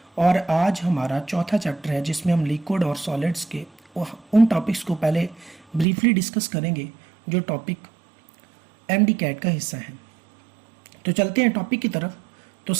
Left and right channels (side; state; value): left; drops out; at 5.9 s